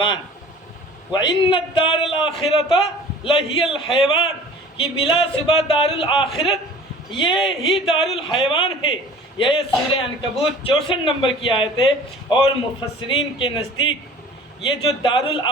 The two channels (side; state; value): both; normal; correlation 0.46